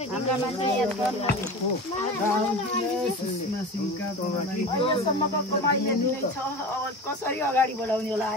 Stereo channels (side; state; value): both; normal; correlation 0.31